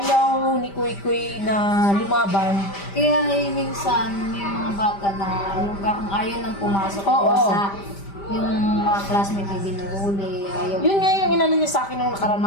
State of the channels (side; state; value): right; late; 5.1 ms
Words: ni Kuy Kuy na lumaban. Kaya minsan, may mga bata na yung ayaw nang pumasok sa yung mga classmate na binuhuli, ayaw. Yun nga yung inano niya sa akin nung nakaraan,